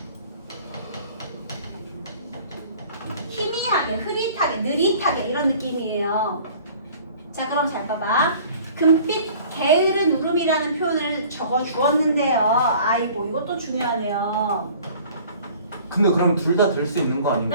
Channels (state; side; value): inverted; both; correlation -0.50